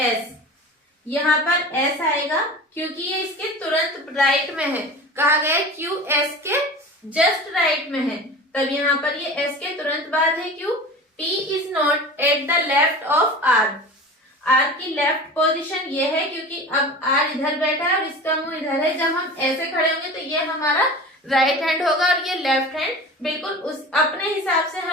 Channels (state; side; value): normal; both; correlation 0.35